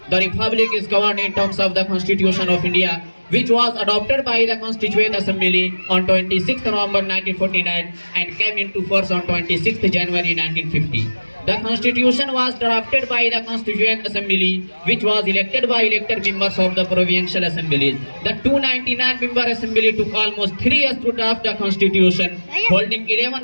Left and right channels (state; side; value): inverted; both; correlation -1.00